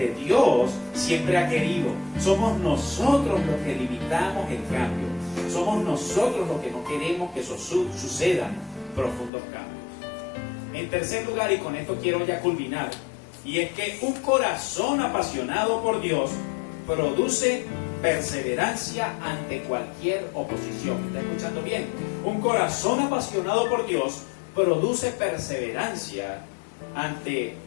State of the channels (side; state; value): right; drops out; at 9.3 s